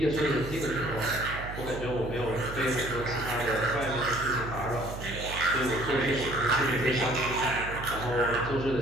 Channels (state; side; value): noise; right; hum, 9 dB below the sound